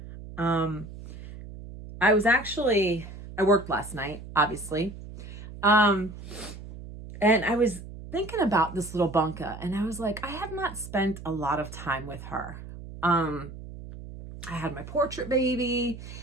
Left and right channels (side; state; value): right; noise; hum, 13 dB below the sound